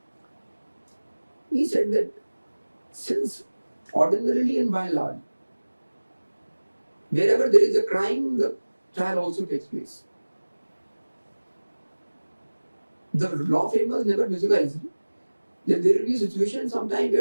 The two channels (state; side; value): inverted; both; correlation -1.00